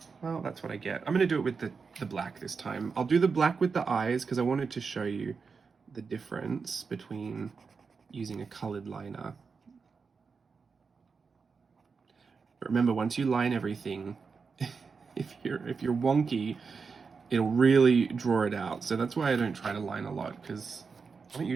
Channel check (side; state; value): left; quieter; 5.2 dB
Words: Well, that's what I get. I'm going to do it with the black this time. I'll do the black with the eyes because I wanted to show you the difference between using a colored liner. But remember, once you line everything, if you're wonky, it'll really draw it out. So that's why I don't try to line a lot, because I don't